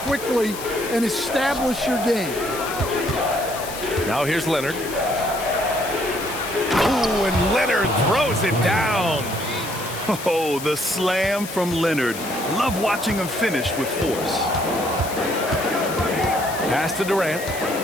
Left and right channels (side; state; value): left; noise; hiss, 11 dB below the sound